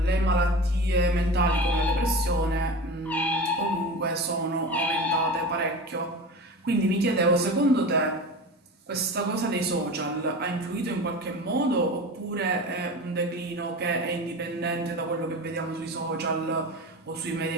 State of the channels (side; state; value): both; normal; correlation 0.31